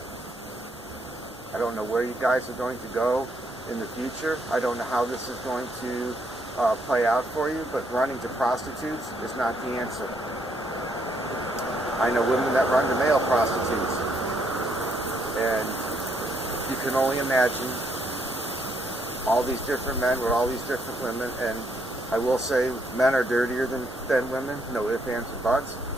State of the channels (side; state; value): both; normal; correlation 0.73